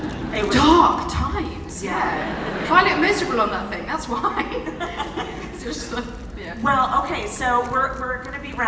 It was Dark times, yeah. I look miserable on that thing, that's why. It's just like, yeah. Well, okay, so we're going to be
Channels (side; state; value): both; identical; correlation 1.00